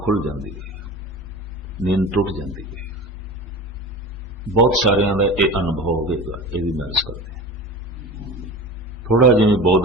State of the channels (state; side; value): normal; both; correlation 0.33